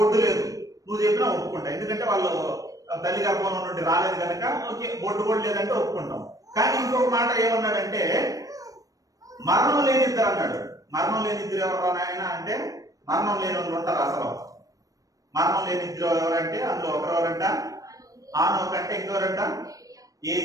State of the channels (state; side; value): late; left; 0.17 ms